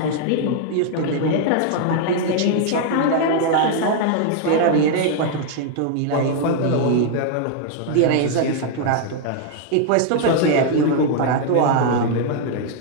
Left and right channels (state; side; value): different; both; correlation 0.00